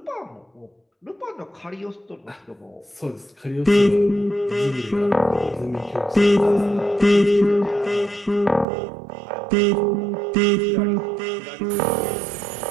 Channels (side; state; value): left; drops out; at 8.7 s